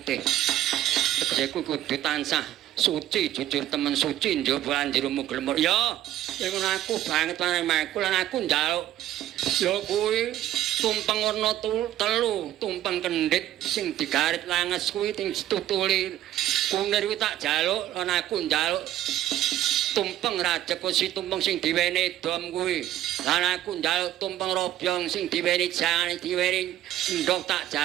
Tegese kowe kudu tansah suci jujur temen suci njaba andirumu glemur. Ya ngono aku banget marang lan aku njaluk ya kuwi tumpeng warna telu, tumpeng kendhit sing digarit langes kuwi sing ditutuli kunir kuwi tak jaluk lan aku njaluk tumpeng rajekusi tumpeng sing diwene dom kuwi. Lan aku njaluk tumpeng robyong sing diwene jangan diwene ndok tak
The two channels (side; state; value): left; quieter; 12.9 dB